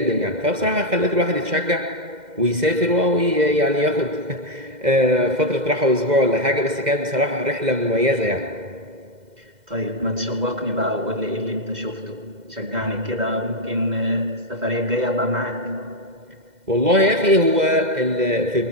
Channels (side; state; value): left; late; 2.0 ms